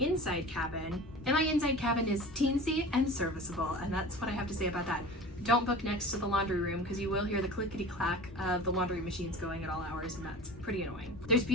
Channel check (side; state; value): both; normal; correlation 0.37